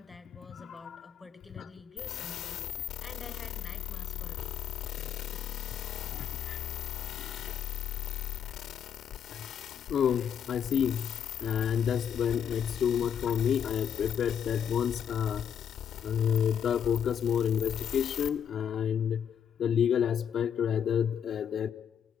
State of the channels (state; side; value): quieter; right; 8.4 dB